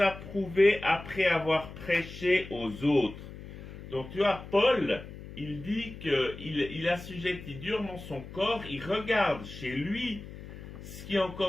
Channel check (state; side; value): noise; left; hum, 13 dB below the sound